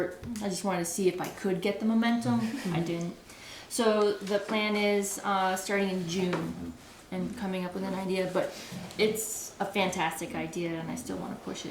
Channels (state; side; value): identical; both; correlation 1.00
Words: I just wanted to see if I could get the momentum. I didn't. So the plan is starting in June and coming up with an idea. But it's a fantastic idea, and I still want to push